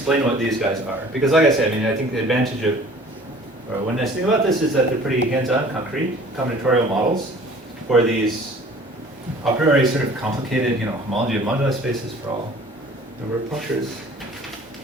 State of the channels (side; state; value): both; normal; correlation 0.49